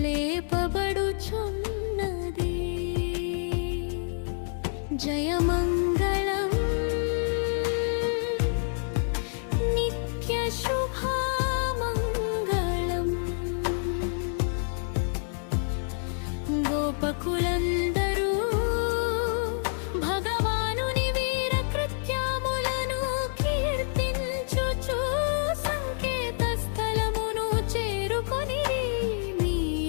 లేపబడుచున్నది. జయమంగళం నిత్య శుభమంగళం గోపకులందరూ భగవానుని వీర కృత్యములను కీర్తించుచు సంకేత స్థలమును చేరుకొని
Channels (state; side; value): silent; right; digital silence